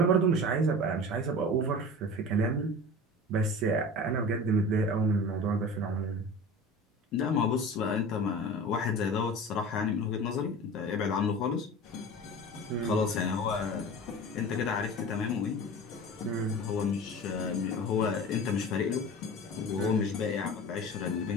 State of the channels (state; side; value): normal; both; correlation 0.35